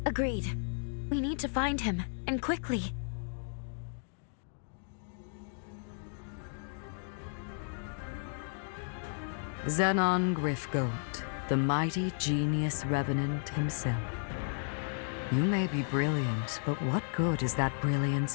Agreed. We need to find him, and quickly. Zenon Griffgoat, the mighty genius revenant himself. You may be brilliant, but what good is that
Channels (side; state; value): right; silent; 55 dB below the other